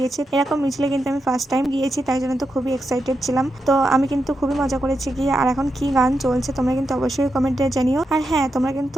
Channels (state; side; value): normal; both; correlation 0.86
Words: এরকম মিছিলে কিন্তু আমি ফার্স্ট টাইম গিয়েছি, তাই জন্য তো খুবই এক্সাইটেড ছিলাম। তো আমি কিন্তু খুবই মজা করেছি গিয়ে। আর এখন কি গান চলছে তোমরা কিন্তু অবশ্যই কমেন্টে জানিও। আর হ্যাঁ, তোমরা কিন্তু